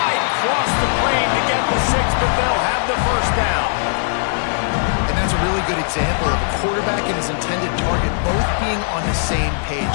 cross the plane to get the 6, but they'll have the 1st down. And that's a really good example of a quarterback and his intended target both being on the same page.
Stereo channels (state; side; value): silent; right; digital silence